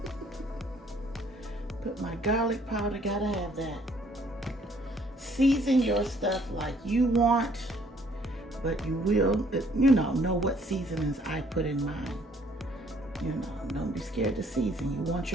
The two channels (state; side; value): normal; both; correlation 0.63